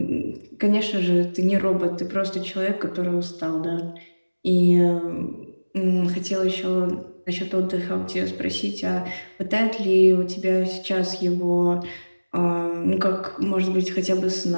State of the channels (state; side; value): inverted; both; correlation -1.00